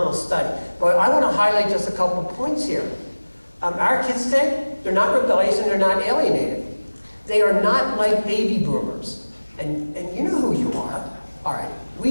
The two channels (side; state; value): both; inverted; correlation -1.00